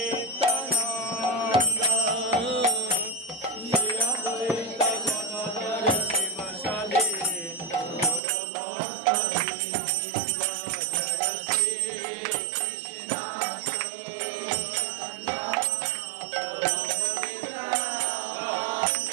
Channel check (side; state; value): left; drops out; at 8.2 s